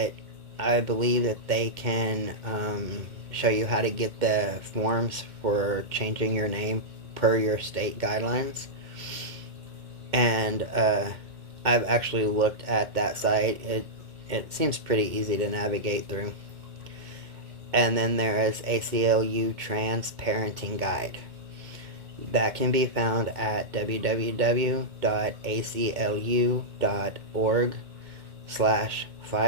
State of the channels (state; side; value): late; left; 2.1 ms